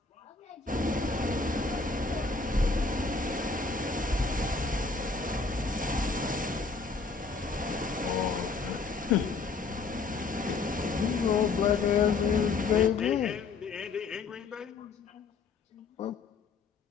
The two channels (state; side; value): quieter; right; 4.4 dB